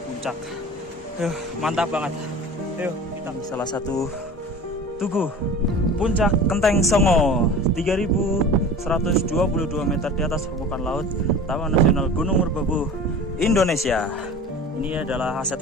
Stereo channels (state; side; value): normal; both; correlation 0.38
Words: puncak. Mantap banget. Ayo kita ke salah satu tugu Puncak Kenteng Songo, 3.122 meter di atas permukaan laut, Taman Nasional Gunung Merbabu, Indonesia. Ini adalah aset